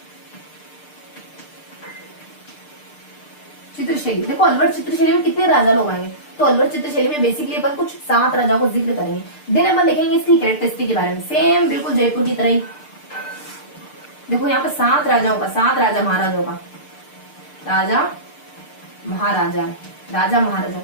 चित्रशैली। देखो अलवर चित्रशैली में कितने राजा लोग आएंगे, तो अलवर चित्रशैली में बेसिकली अपन कुछ 7 राजाओं को जिक्र करेंगे। देन अपन देखेंगे इसकी कैरेक्टरिस्टिक के बारे में, सेम बिल्कुल जयपुर की तरह ही। देखो यहाँ पे 7 राजाओं का, 7 राजा महाराजाओं का, राजा महाराजा है, राजा महाराजा।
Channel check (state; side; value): late; right; 6.7 ms